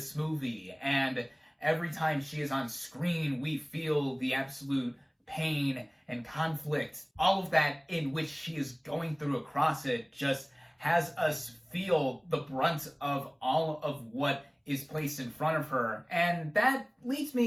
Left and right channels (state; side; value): identical; both; correlation 1.00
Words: movie, and every time she is on screen, we feel the absolute pain and conflict. All of that in which she is going through across it just has us feel the brunt of all of what is placed in front of her. And that leads